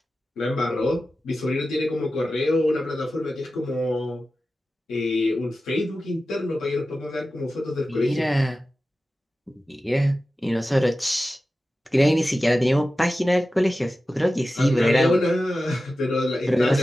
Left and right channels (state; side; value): normal; both; correlation 0.94